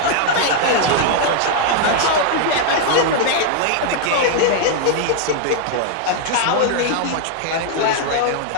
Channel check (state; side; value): different; both; correlation 0.00